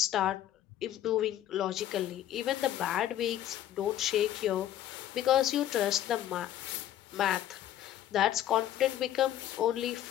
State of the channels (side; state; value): right; quieter; 12.1 dB